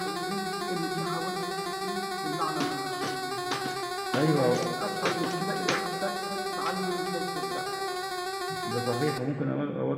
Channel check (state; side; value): identical; both; correlation 1.00